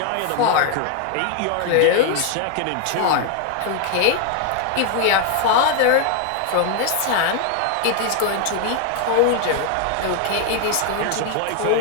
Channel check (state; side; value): different; both; correlation 0.00